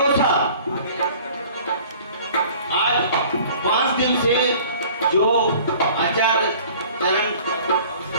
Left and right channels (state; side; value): inverted; both; correlation -0.49